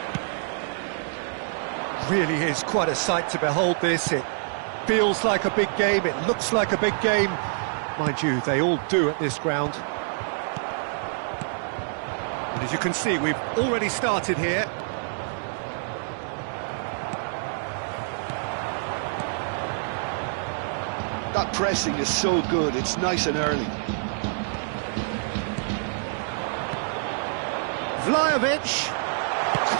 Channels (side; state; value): left; silent; digital silence